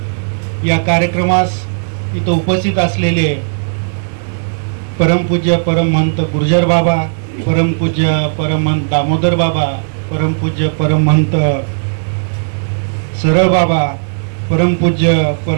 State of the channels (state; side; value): silent; left; digital silence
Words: या कार्यक्रमास इथं उपस्थित असलेले परमपूज्य परमहंत गुर्जर बाबा, परमपूज्य परमहंत दामोदर बाबा, परमपूज्य परमहंत सरळ बाबा, परमपूज्य